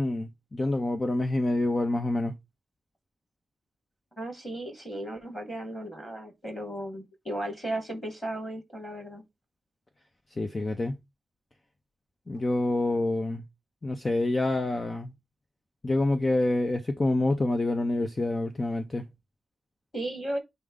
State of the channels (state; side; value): normal; both; correlation 0.94